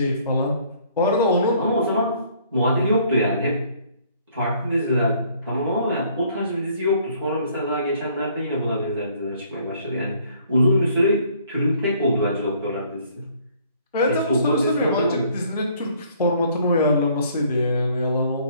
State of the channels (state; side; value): inverted; both; correlation -0.61